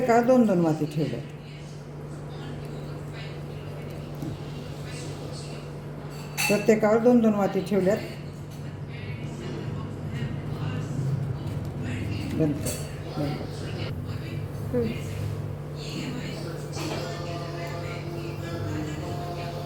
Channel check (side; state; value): both; identical; correlation 1.00